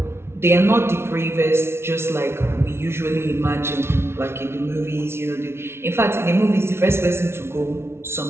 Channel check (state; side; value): late; left; 0.12 ms